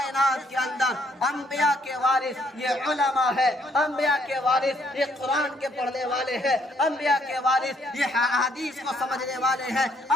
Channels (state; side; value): normal; both; correlation 0.68